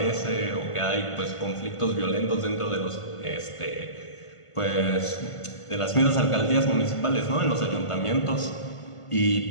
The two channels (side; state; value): right; late; 1.5 ms